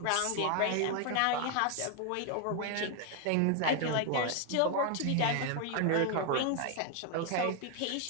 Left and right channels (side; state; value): both; different; correlation 0.00